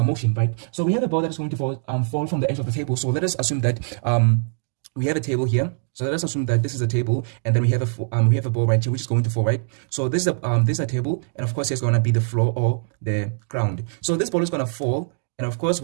motion, right? So we have a ball that is going to fall from the edge of the table. So let us assume that we have a table here. So let us assume that this is a table, and then we have a ball right here which is going to fall, right? So this is a table, and of course it's going to be the floor or the ground. So this ball is going to fall, and of course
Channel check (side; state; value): left; silent; digital silence